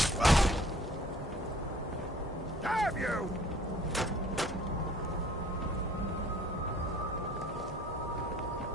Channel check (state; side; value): normal; both; correlation 0.53